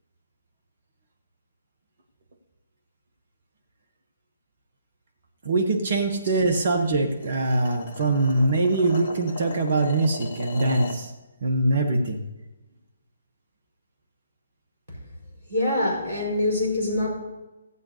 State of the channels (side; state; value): both; inverted; correlation -0.69